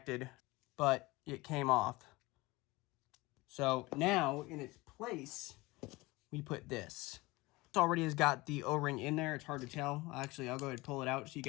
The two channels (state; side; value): quieter; right; 21.8 dB